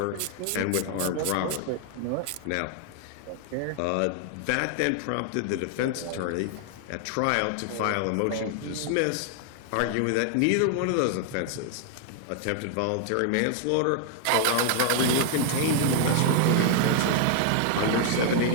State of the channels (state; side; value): different; both; correlation 0.00